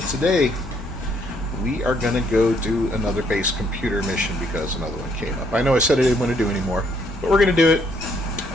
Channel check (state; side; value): normal; both; correlation 0.68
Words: today, we are going to go do another base computer mission because another one came up. I know I said I didn't want to do anymore, but we're going to do it.